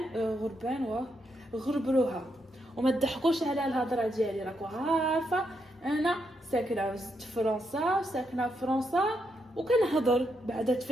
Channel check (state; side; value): normal; both; correlation 0.80